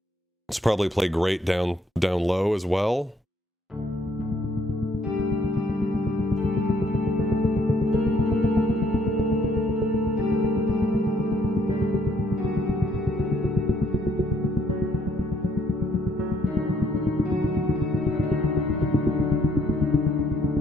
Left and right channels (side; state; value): both; normal; correlation 0.67